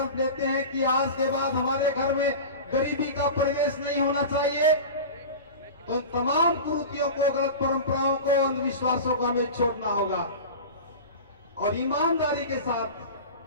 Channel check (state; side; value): inverted; both; correlation -0.31